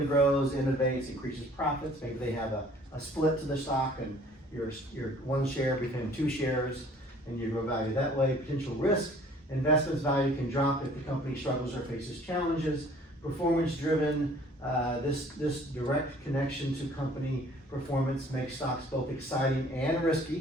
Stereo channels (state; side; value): normal; both; correlation 0.53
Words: grows, innovates, increases profits. Maybe they have a split to the stock and your one share became 2 shares and you grow value that way. Potential risk, investments value can drop if the company struggles or faces challenges. Performance driven, this direct connection to company performance makes stocks both exciting and